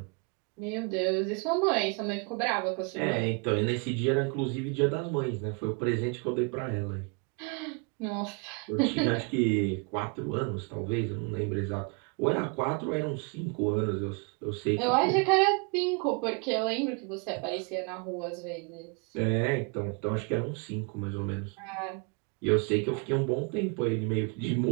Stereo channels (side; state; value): left; quieter; 33.9 dB